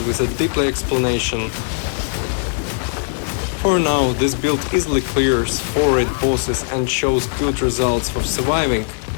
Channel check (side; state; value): right; silent; 57 dB below the other